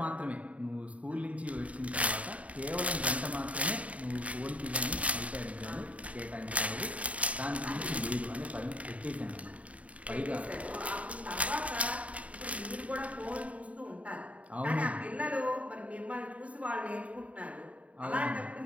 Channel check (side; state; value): left; late; 0.067 ms